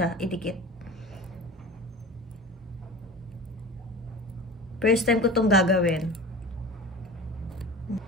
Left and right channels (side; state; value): both; normal; correlation 0.36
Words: idikit. First time ko itong gagawin.